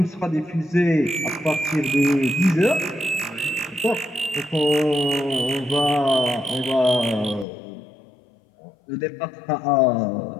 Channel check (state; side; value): drops out; right; at 7.5 s